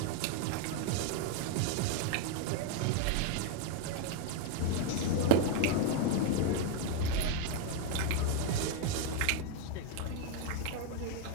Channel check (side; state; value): both; different; correlation 0.01